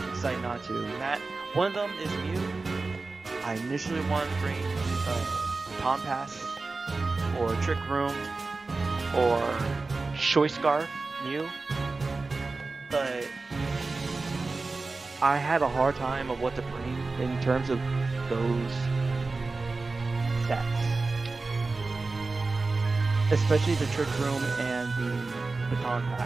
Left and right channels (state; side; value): quieter; left; 3.7 dB